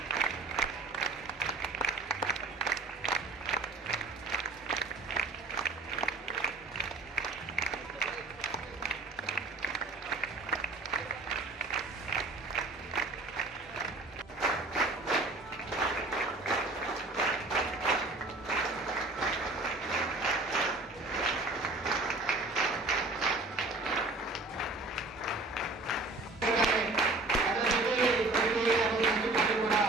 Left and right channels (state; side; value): quieter; left; 3.2 dB